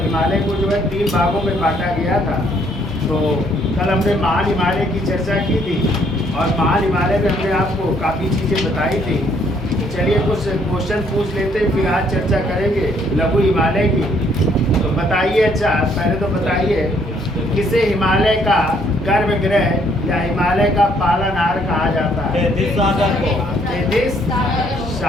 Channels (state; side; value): normal; both; correlation 0.66